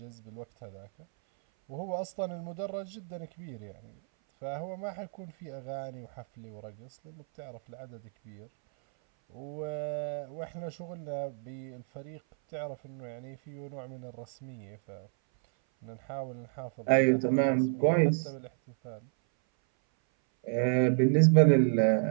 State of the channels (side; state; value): left; silent; 57 dB below the other